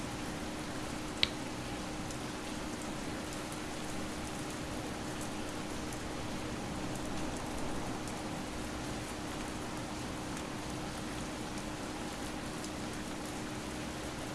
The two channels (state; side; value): identical; both; correlation 1.00